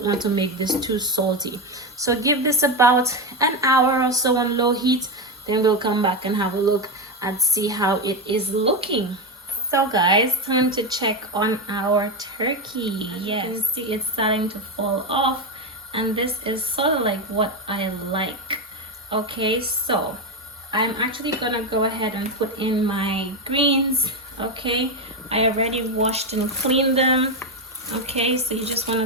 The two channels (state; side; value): normal; both; correlation 0.11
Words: want to make this too salty. So give this about an hour or so on low heat, then we'll come back and have a look and see how it is looking. So guys, time to check on our turkey. Yes, you can see it's starting to fall off, and this is sort of like what I like. Okay, so I'm actually gonna go ahead and put in my greens. Okay, I already washed and cleaned them. Okay, so you just want